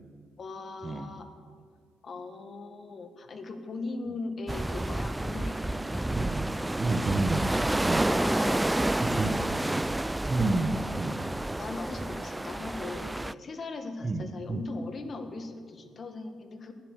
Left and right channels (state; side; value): normal; both; correlation 0.95